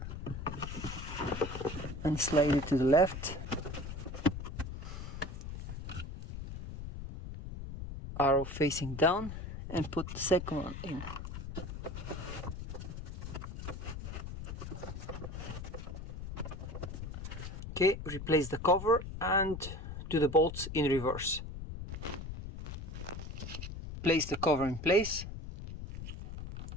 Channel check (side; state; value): left; noise; rumble, 8 dB below the sound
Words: and slide it to the left. Arrow facing down and put the second one in. Okay, replace the cover and do the bolts in reverse. Place the cover in place.